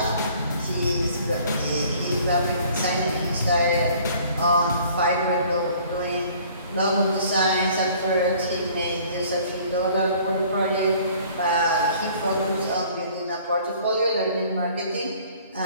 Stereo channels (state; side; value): inverted; both; correlation -0.54